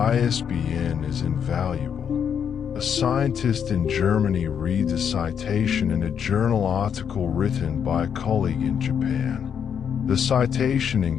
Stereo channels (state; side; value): quieter; right; 7.8 dB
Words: is invaluable. A scientist in Germany reads a citation in a journal article written by a colleague in Japan. The citation